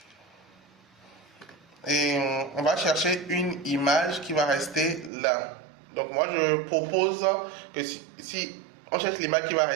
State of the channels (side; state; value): left; drops out; at 5.1 s